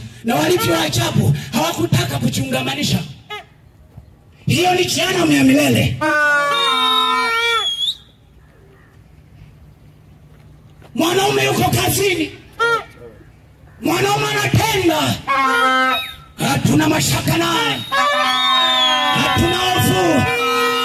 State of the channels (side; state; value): both; identical; correlation 1.00